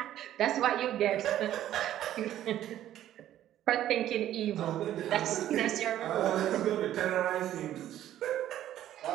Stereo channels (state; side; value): quieter; left; 12.3 dB